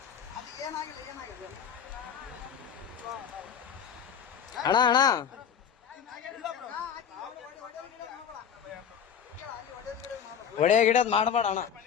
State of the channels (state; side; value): quieter; right; 8.0 dB